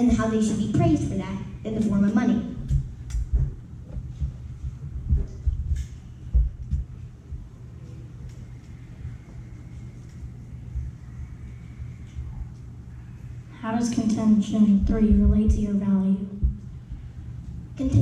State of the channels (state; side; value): identical; both; correlation 1.00